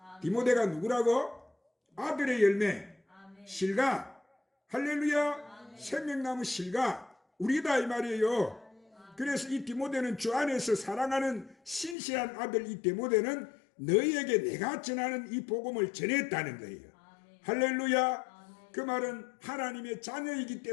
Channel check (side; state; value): right; drops out; at 12.0 s